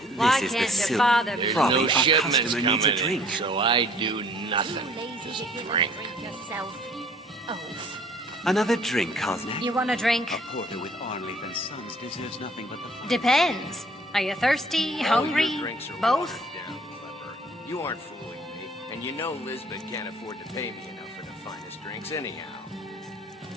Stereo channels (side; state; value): both; normal; correlation 0.55